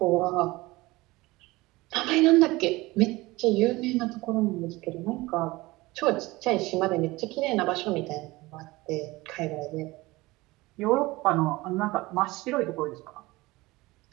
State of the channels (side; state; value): left; quieter; 20.7 dB